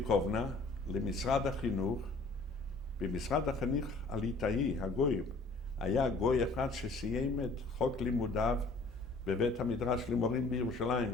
למשרד החינוך. במשרד החינוך הליטאי, הגויים, היה גוי אחד שסיים את חוק לימודיו בבית המדרש למורים בירושלים,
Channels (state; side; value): quieter; right; 3.4 dB